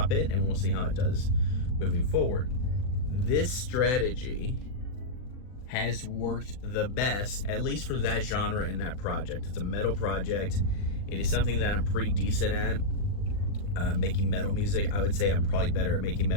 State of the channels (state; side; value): late; right; 40 ms